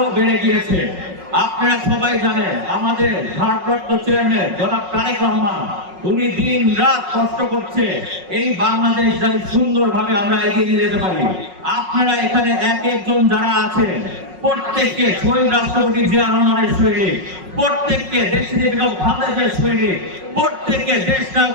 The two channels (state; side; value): late; left; 5.4 ms